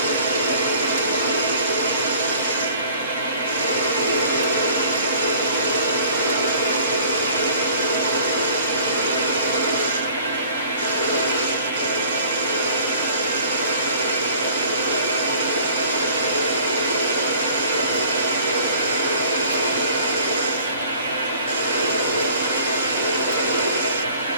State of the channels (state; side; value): inverted; both; correlation -0.50